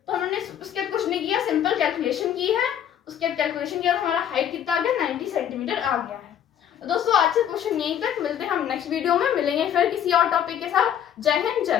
तो हमने उसके बाद कुछ नहीं किया, सिंपल कैलकुलेशन की है, उसके बाद कैलकुलेशन किया तो हमारा हाइट कितना आ गया 90 सेंटीमीटर आ गया है। तो दोस्तों आज से क्वेश्चन यहीं तक, मिलते हैं हम नेक्स्ट वीडियो में, मिलेंगे फिर किसी और टॉपिक के साथ। जय हिंद जय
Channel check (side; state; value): right; quieter; 9.7 dB